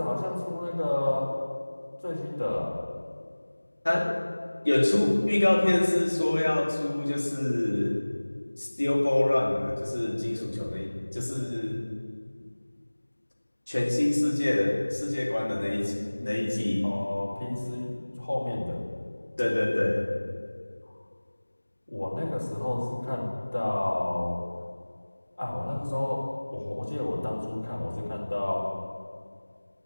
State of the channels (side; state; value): both; inverted; correlation -1.00